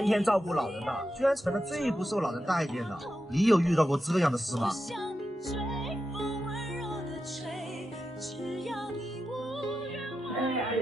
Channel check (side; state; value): both; normal; correlation 0.89